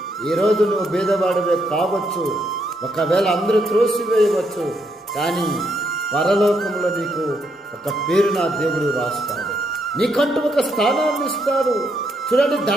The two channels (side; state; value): both; normal; correlation 0.77